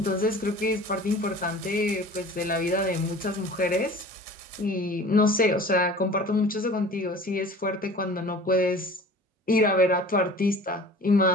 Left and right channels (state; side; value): normal; both; correlation 0.43